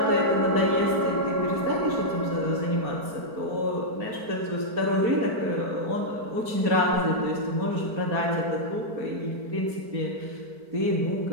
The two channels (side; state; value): left; late; 4.5 ms